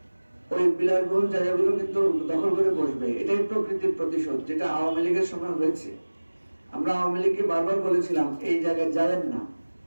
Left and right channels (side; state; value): both; inverted; correlation -1.00